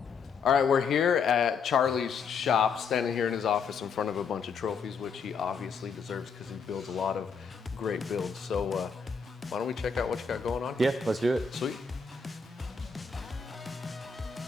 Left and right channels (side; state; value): right; quieter; 5.5 dB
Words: All right, we're here at Charlie's shop, standing here in his office in front of a bunch of trophies, which he obviously deserves because he builds a lot of great builds. So why don't we check out what you got going on? Yeah, let's do it. Sweet.